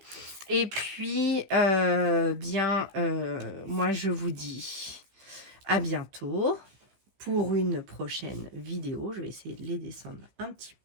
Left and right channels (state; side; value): late; left; 15 ms